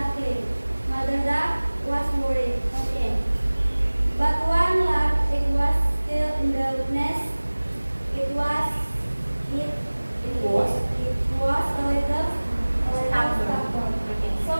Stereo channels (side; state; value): both; inverted; correlation -1.00